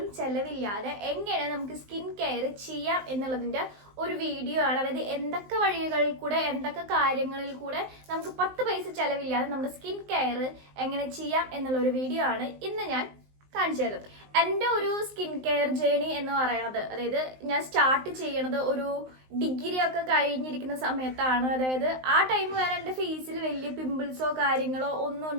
ചെലവില്ലാതെ എങ്ങനെ നമുക്ക് സ്കിൻ കെയർ ചെയ്യാം എന്നുള്ളതിന്റെ ഒരു വീഡിയോ ആണ്. അതായത് എന്തൊക്കെ വഴികളിൽ കൂടെ, എന്തൊക്കെ കാര്യങ്ങളിൽ കൂടെ നമുക്ക് 10 പൈസ ചെലവില്ലാതെ നമ്മുടെ സ്കിൻ കെയർ എങ്ങനെ ചെയ്യാം എന്നുള്ള ഒരു വീഡിയോ ആണ് ഇന്ന് ഞാൻ കാണിച്ചു തരുന്നത്. എൻ്റെ ഒരു സ്കിൻ കെയർ ജേണി എന്ന് പറയുന്നത്, അതായത് ഞാൻ സ്റ്റാർട്ട് ചെയ്യണത് ഒരു ഡിഗ്രി ഒക്കെ കഴിഞ്ഞിരിക്കുന്ന സമയത്താണ്. അതായത് ആ ടൈം വരെ എൻ്റെ ഫേസിൽ വലിയ പിമ്പിൾസോ കാര്യങ്ങളോ ഒന്നും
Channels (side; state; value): left; late; 19 ms